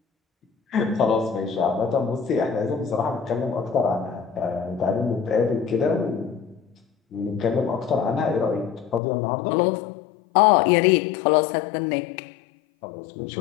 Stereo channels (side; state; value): right; drops out; at 9.0 s